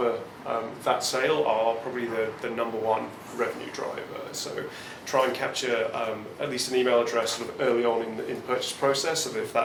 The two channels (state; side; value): identical; both; correlation 1.00